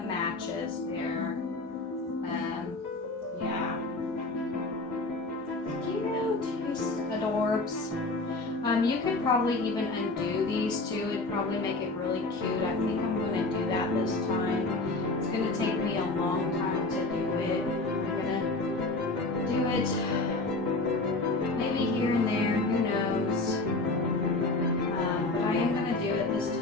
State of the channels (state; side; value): quieter; right; 3.1 dB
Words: matches there. Yeah. Cute. He's adorbs. You could probably even undo these too. It'd probably make it really cute. I think I'm going to do that this time. It's going to take me a long time to do it. I'm going to do it maybe here and there. Who knows? But I am going to do it this